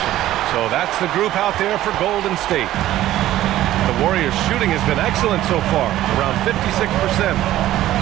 So that's the group out there for Golden State. The Warriors' shooting has been excellent so far, around 56%.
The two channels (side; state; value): left; quieter; 14.1 dB